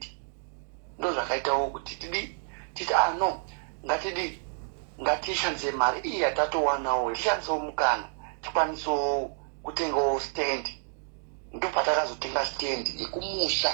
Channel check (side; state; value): left; silent; 57 dB below the other